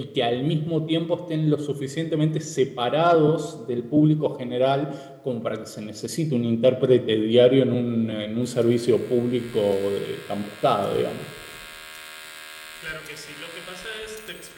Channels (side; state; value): both; identical; correlation 1.00